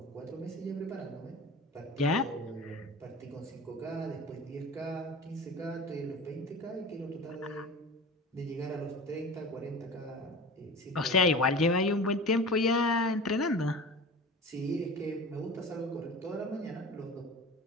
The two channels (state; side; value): normal; both; correlation 0.35